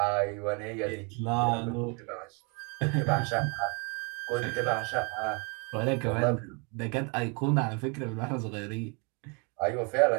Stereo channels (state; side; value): quieter; left; 33.4 dB